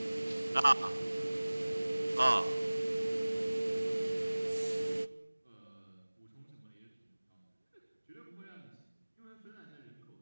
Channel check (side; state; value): both; inverted; correlation -1.00